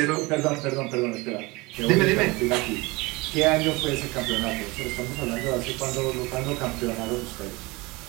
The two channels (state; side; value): quieter; left; 23.8 dB